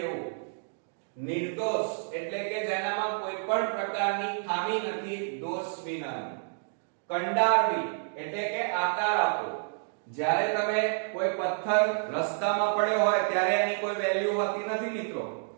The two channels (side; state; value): left; silent; digital silence